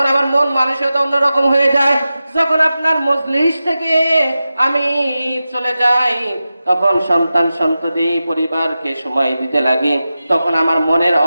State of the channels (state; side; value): inverted; both; correlation -0.93